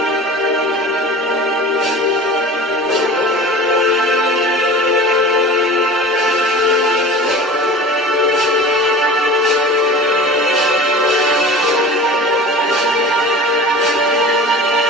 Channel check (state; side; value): normal; both; correlation 0.37